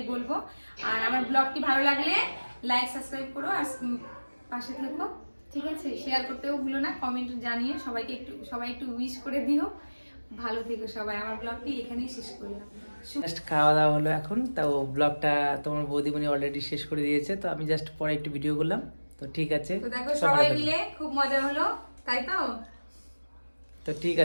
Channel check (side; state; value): both; inverted; correlation -1.00